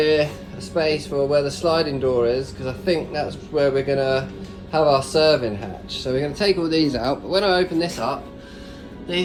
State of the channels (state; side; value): identical; both; correlation 1.00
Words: a space for where the sliding door is, because I think that's where we're going to have our serving hatch. So we're going to take all these out, but when I open this up,